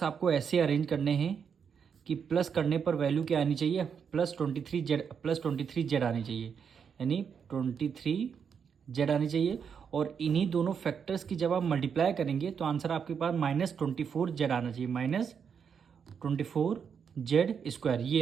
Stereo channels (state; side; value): quieter; left; 6.9 dB